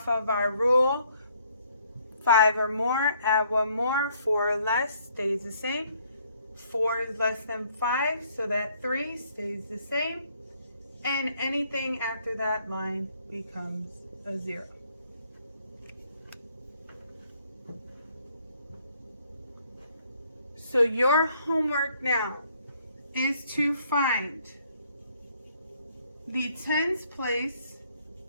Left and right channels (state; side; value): inverted; both; correlation -0.66